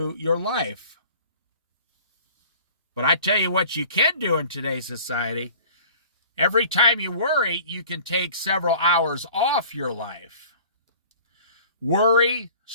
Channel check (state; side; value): inverted; both; correlation -0.46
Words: your life? But I tell you what you can do in today's society. Every time you worry, you can take several hours off your life. Worry,